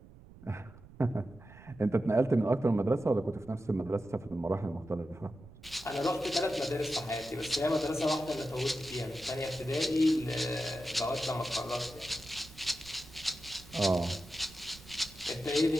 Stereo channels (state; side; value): noise; right; rumble, 20 dB below the sound